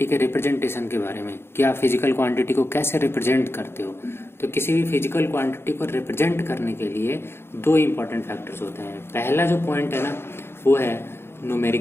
के रिप्रेजेंटेशन के बारे में कि आप फिजिकल क्वांटिटी को कैसे रिप्रेजेंट करते हो। तो किसी भी फिजिकल क्वांटिटी को रिप्रेजेंट करने के लिए दो इंपॉर्टेंट फैक्टर्स होते हैं। पहला जो पॉइंट है ना, वो है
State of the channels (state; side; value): late; right; 0.11 ms